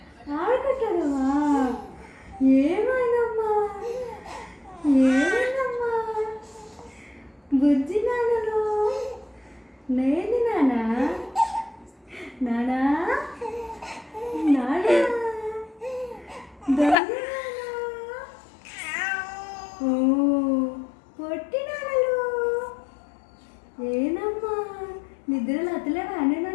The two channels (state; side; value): drops out; right; at 16.9 s